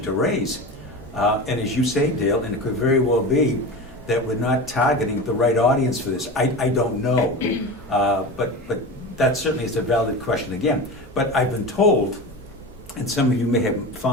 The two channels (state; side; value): normal; both; correlation 0.28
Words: to raise. And as you say, Dale, and it could very well be that we're not targeting the right audience for this. I don't know, but that certainly is a valid question again. But I've been told, and some of you may have